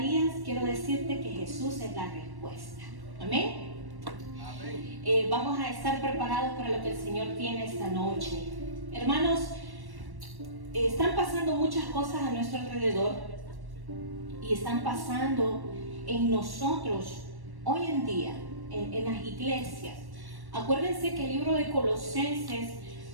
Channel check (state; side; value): late; left; 1.1 ms